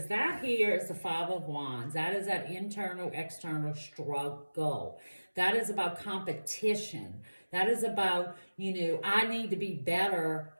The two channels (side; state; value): both; inverted; correlation -1.00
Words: that here is the Five of Wands. That is that internal, external struggle. That is about competition. That is about, I need to be better